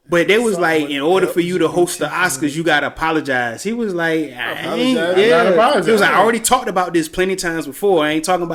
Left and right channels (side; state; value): both; identical; correlation 1.00